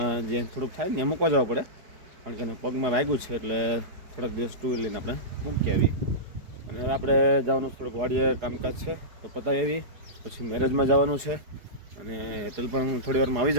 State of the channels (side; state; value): left; late; 4.7 ms